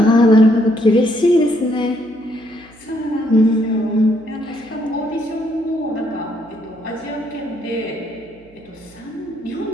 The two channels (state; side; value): noise; right; hum, 28 dB below the sound